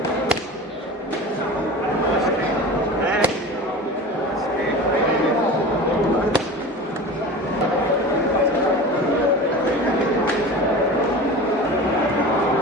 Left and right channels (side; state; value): both; normal; correlation 0.34